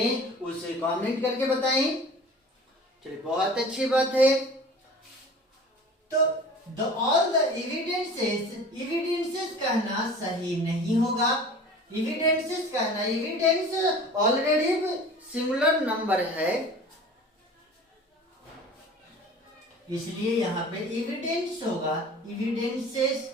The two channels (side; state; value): both; normal; correlation 0.42